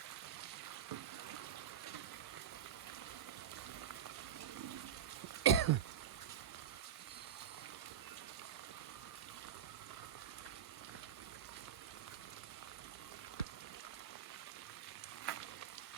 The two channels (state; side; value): quieter; left; 8.9 dB